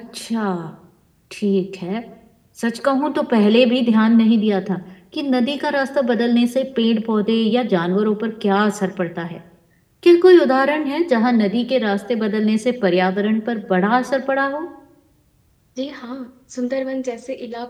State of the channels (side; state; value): both; identical; correlation 1.00